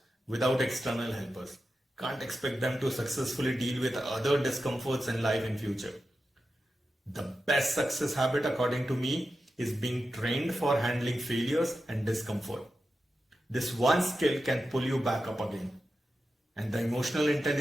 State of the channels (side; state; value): both; normal; correlation 0.91